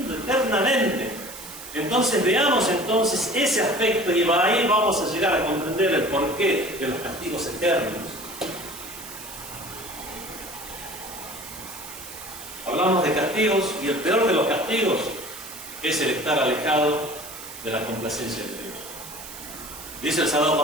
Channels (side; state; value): right; noise; hiss, 13 dB below the sound